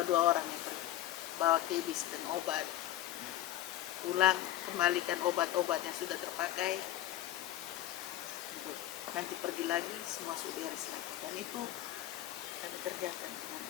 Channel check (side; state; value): right; quieter; 13.8 dB